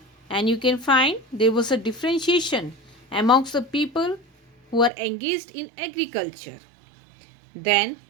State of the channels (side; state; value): left; drops out; at 4.9 s